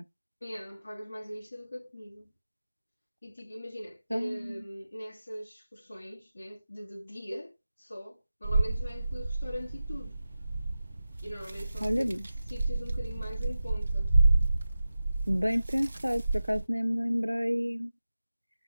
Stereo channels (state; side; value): inverted; both; correlation -0.94